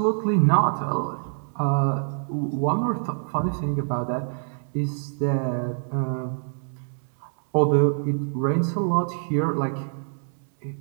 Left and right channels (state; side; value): silent; left; 61 dB below the other